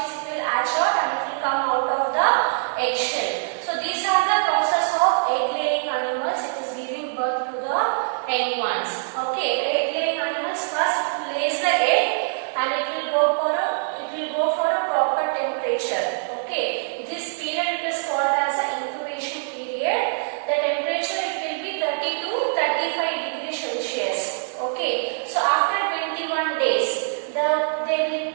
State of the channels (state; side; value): silent; left; digital silence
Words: will hatch out and it will come out of the eggshell. So these are the process of egg laying animals. It is giving birth to the young ones. Okay, the egg laying animals first lays the egg and it will go for a proper temperature. Okay, this period it is called as an incubation period. The temperature it will be 30 to 35 degrees Celsius. Okay, so after 21 days